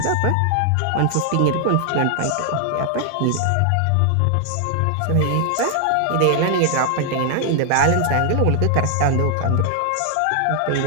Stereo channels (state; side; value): different; both; correlation 0.00